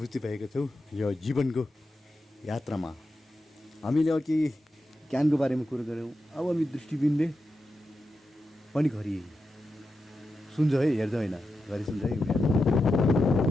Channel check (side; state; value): both; normal; correlation 0.88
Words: भएको छु यो जीवनको यात्रामा। हामीले अघि ज्ञानको बारेमा कुरो गऱ्यौँ। अब हामी दृष्टिबिनले पनि घरि सुन्छ है, हेर्छ होइन, घरि सुन्छ है।